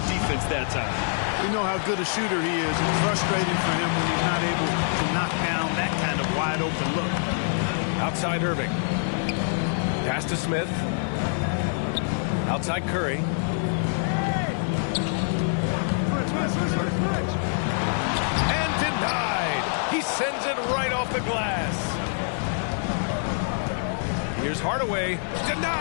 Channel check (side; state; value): right; silent; digital silence